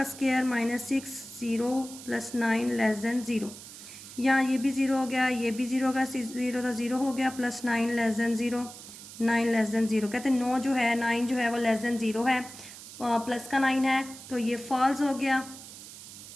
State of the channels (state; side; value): noise; right; hiss, 15 dB below the sound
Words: स्क्वायर -6, 0 + 9 < 0। यहाँ ये भी 0 हो गया, ये भी 0 का 0 था, 0 हो गया, + 9 < 0, 9 < 0। कहते हैं 9 जो है 9 जो है वो < 0 है, प्लस का 9 है तो ये फॉल्स हो गया।